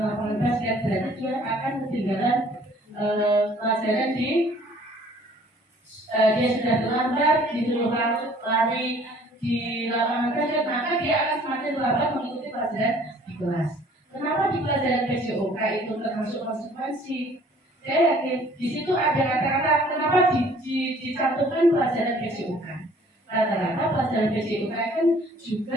lapangan basket, berarti dia akan ketinggalan pelajaran dia sudah terlambat, disuruh lari di lapangan basket, maka dia akan semakin lambat mengikuti pelajaran di kelas. Kenapa di pelajaran PJOK itu termasuk konsekuensi? Saya yakin di situ ada kata-kata kenapa dicantumkan pelajaran PJOK. Rata-rata pelajaran PJOK kan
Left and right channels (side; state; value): both; normal; correlation 0.56